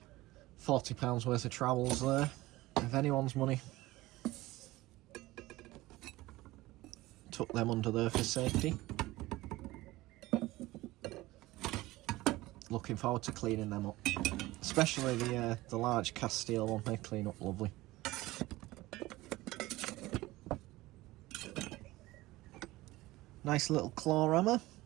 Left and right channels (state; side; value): quieter; left; 18.6 dB